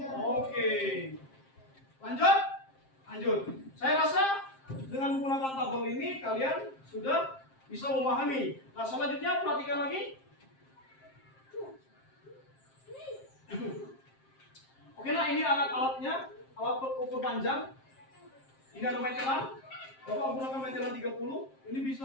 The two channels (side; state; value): right; late; 7.5 ms